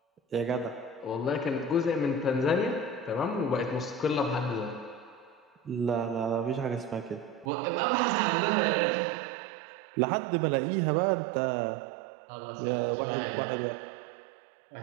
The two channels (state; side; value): drops out; left; at 7.5 s